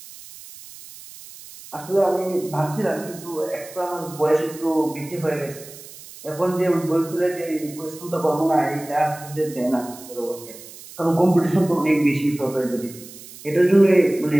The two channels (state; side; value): noise; right; hiss, 17 dB below the sound